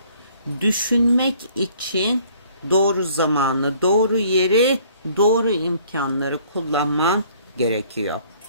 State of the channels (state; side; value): inverted; both; correlation -0.58